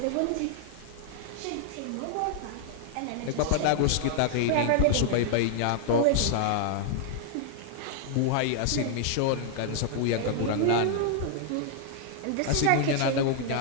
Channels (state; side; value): different; both; correlation -0.01